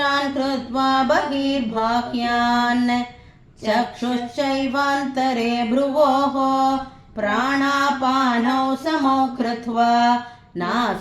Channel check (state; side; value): identical; both; correlation 1.00